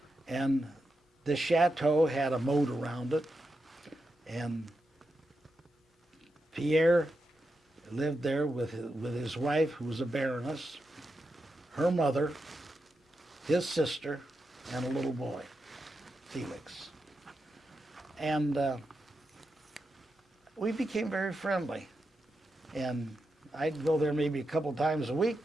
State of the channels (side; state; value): both; normal; correlation 0.87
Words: And the chateau had a moat around it. And Pierre lived there with his wife, who was a baroness, her mother, his sister, and a little boy, Felix. And we became very friendly. And I'd go there maybe a couple times a week.